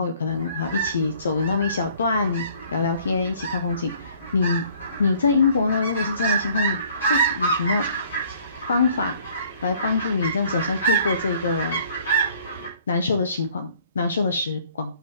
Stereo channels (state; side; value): inverted; both; correlation -0.57